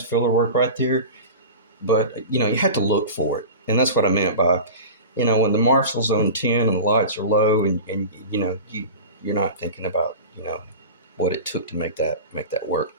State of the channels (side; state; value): both; inverted; correlation -0.32